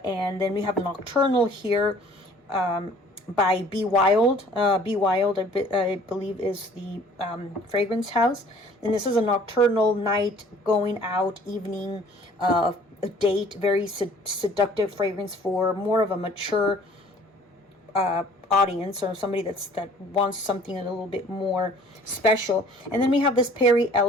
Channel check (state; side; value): normal; both; correlation 0.53